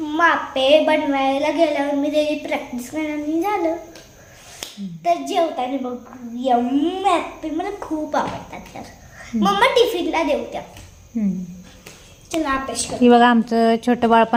आप्पे बनवायला गेल्यावर मी त्याची प्रॅक्टिस करणार झालं. तर जेवताना बघ यम्मी आप्पे मला खूप आवडतात. तर मम्मा टिफिनला देऊ त्या. चला अभ्यास कर. ही बघा आमचं छोटं बाळ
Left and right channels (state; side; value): identical; both; correlation 1.00